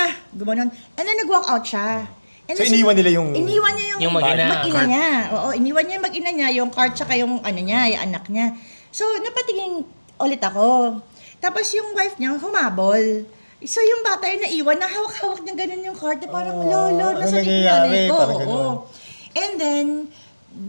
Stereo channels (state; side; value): inverted; both; correlation -1.00